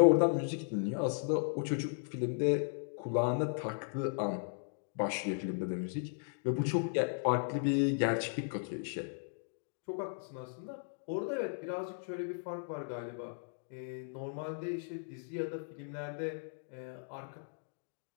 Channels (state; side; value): silent; right; digital silence